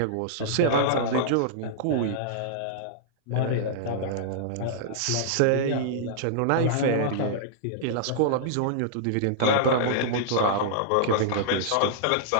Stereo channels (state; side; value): different; both; correlation -0.02